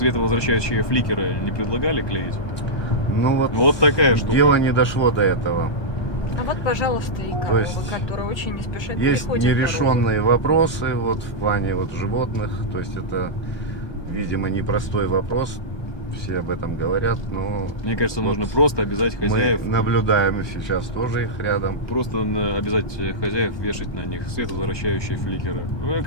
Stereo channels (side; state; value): right; late; 1.2 ms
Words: фликеры не предлагали клеить? Ну Вот такая штука. Дело не дошло до этого. А вот, пожалуйста, и То корова, есть которая очень не спешит Есть приходит дорогу. нерешенные вопросы вот в плане вот животных. То есть это, видимо, непростой вопрос. Все об этом говорят, но Мне кажется, Вот нужно просто обязать мы хозяев, наблюдаем сейчас тоже их рядом. просто обязать хозяев вешать на них световозвращающие фликеры. Ну, мне